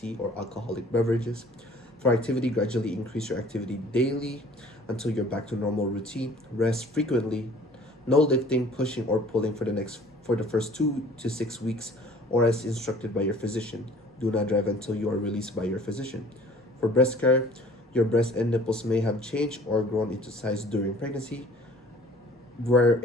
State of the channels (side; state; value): both; normal; correlation 0.50